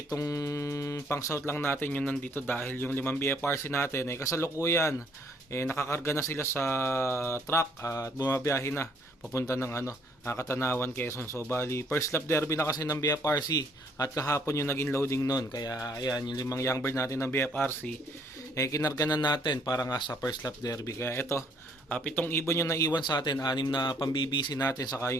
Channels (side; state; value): both; normal; correlation 0.65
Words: pang south lang natin yung nandito dahil yung 5 BFRC natin ay kasalukuyan nakakarga na sila sa truck at bumabiyahe na papunta ng Katanawan, Quezon. So bali first lap derby na kasi ng BFRC at kahapon yung naging loading nun, kaya ayan yung 5 young bird natin ng BFRC kinarga na natin para nga sa first lap derby. Kaya ito, 7 ibon yung naiwan sa atin, 6 na pang BBC natin saka